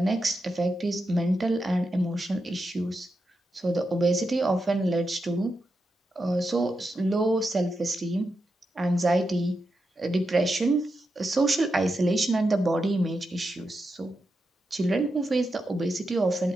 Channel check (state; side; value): normal; both; correlation 0.87